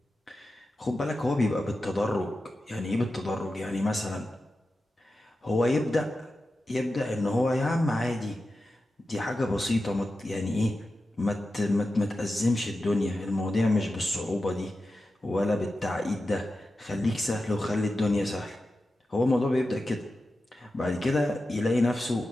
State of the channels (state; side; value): normal; both; correlation 0.92